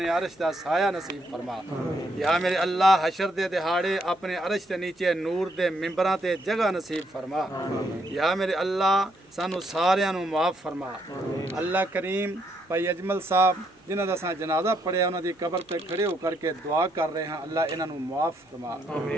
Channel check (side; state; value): both; normal; correlation 0.74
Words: عرش دا سایہ نصیب فرما یا میرے اللہ حشر دے دہاڑے اپنے عرش دے نیچے نور دے ممبراں تے جگہ نصیب فرما یا میرے اللہ سانو ساریاں نو معاف فرما اللہ کریم بھائی اجمل صاحب جنہاں دا ساں جنازہ پڑھیا انہاں دی قبر تے کھڑے ہو کر کے دعا کر رہے ہیں اللہ انہاں نو معاف فرما